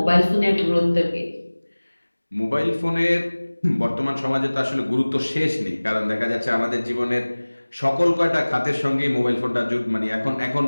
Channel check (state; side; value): inverted; both; correlation -1.00